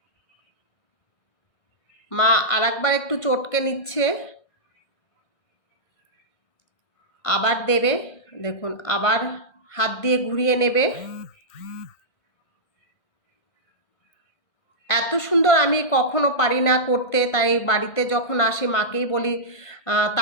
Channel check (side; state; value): right; late; 1.5 ms